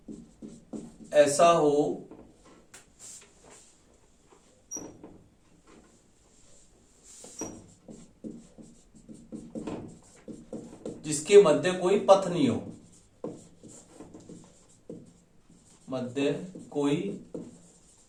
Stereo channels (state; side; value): identical; both; correlation 1.00